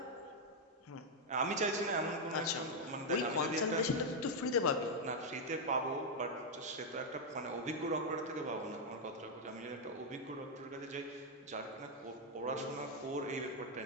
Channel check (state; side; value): normal; both; correlation 0.00